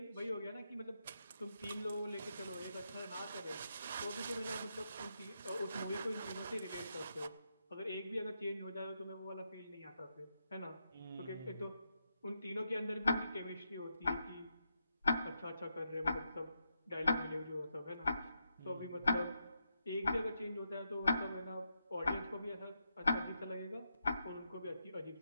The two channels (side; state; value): both; inverted; correlation -0.83